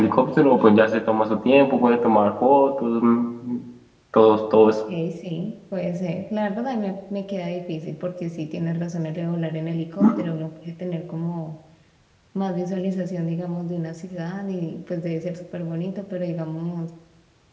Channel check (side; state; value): both; identical; correlation 1.00